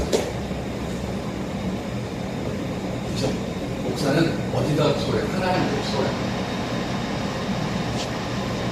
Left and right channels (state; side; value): identical; both; correlation 1.00